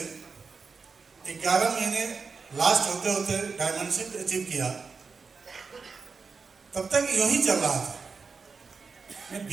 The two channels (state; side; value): quieter; left; 4.9 dB